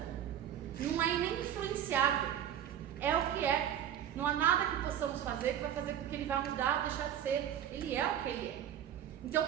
Não é nem influenciável. É o que é. Não há nada que possamos fazer que vai fazer com que ele vá mudar ou deixar de ser. Ele é o que ele é. Então,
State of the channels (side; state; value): left; quieter; 10.2 dB